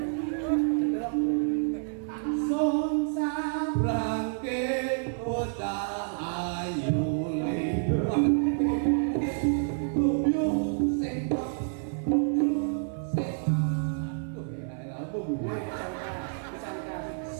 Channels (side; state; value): left; silent; 59 dB below the other